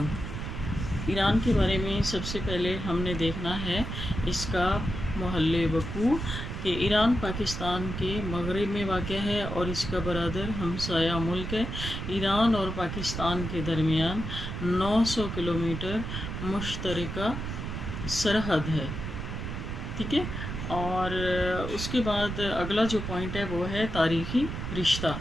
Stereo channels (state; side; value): noise; right; rumble, 5 dB below the sound